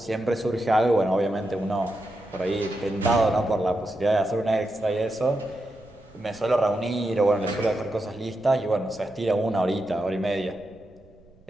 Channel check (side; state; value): right; noise; rumble, 28 dB below the sound